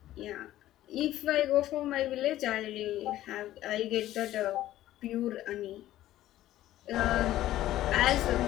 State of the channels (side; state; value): right; quieter; 14.1 dB